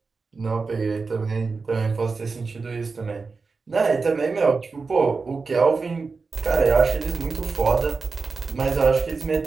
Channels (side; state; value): left; quieter; 4.4 dB